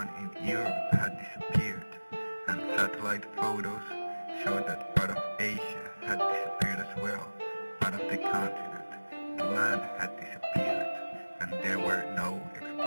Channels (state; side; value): inverted; both; correlation -1.00